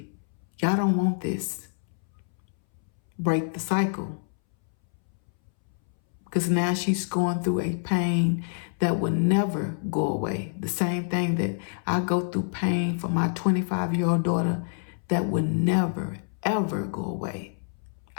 Y'all don't want this. Break the cycle. Because now she's going through a pain that will never go away. The same thing that I go through pain for my 25-year-old daughter that will never, ever go away.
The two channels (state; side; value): silent; right; 60 dB below the other